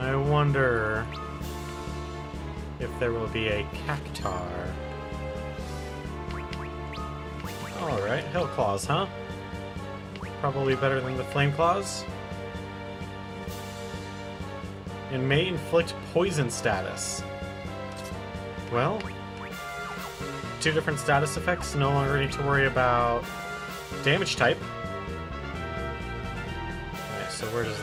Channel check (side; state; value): both; identical; correlation 1.00